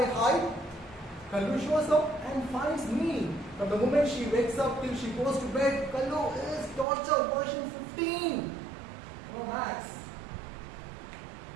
hide, Kallu shows up and finds me. From the moment she wakes up till she goes to bed, Kallu is torture version 15. No max.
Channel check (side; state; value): left; drops out; at 6.9 s